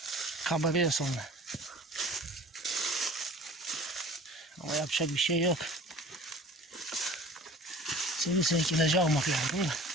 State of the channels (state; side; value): normal; both; correlation 0.44